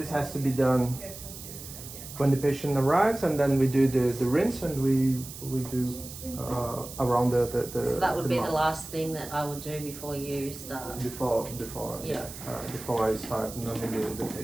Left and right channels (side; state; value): right; noise; hiss, 13 dB below the sound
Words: has to be done when the patient arrives, and then we do the rinse, and we do around the. So that would be mouth. the last thing that I would do before you start. Before I start numbing the